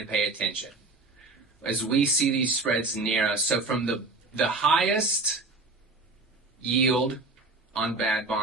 to pay attention. As we see these spreads narrow, so from the highest yield on bad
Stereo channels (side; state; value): left; quieter; 3.3 dB